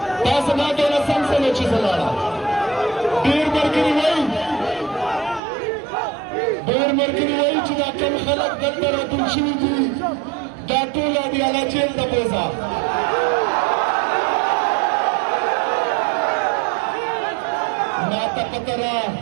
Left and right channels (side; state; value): left; drops out; at 5.4 s